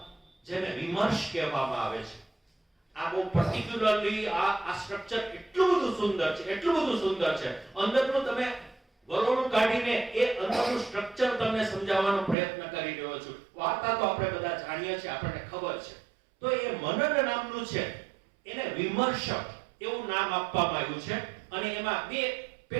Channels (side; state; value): left; drops out; at 12.4 s